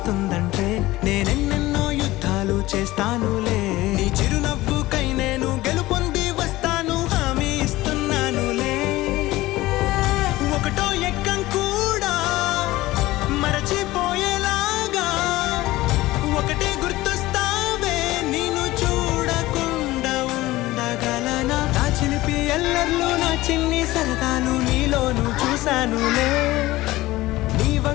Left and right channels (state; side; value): quieter; right; 18.0 dB